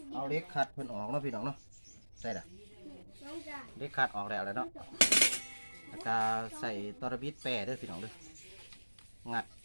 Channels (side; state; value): both; inverted; correlation -1.00